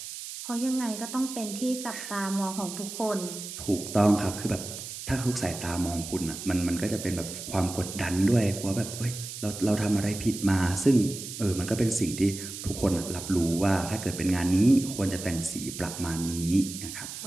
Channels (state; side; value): noise; right; hiss, 9 dB below the sound